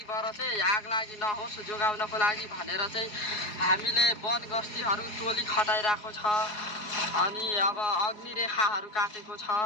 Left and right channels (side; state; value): right; late; 4.8 ms